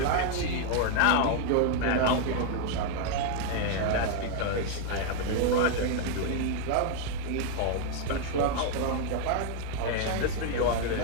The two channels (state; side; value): different; both; correlation 0.00